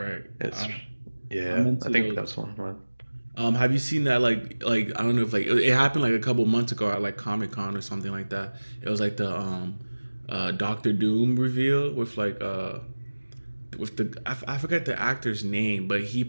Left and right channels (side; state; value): both; inverted; correlation -1.00